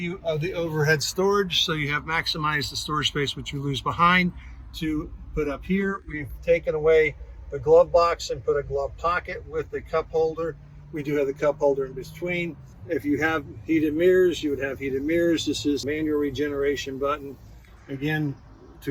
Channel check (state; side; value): identical; both; correlation 1.00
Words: of the overhead storage, so you have maximized the storage space which you lose behind to put up here. We've taken away the glove box and put a glove pocket with the cup holder. We do have the cup holder in between. If you have heated mirrors, you would have heated mirrors. This is manual regeneration button. Again,